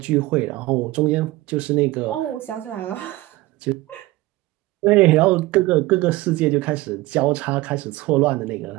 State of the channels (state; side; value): quieter; left; 19.2 dB